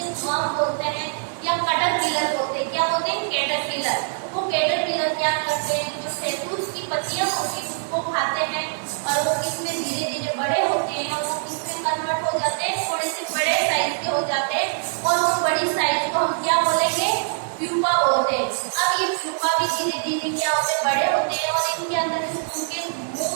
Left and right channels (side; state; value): left; silent; digital silence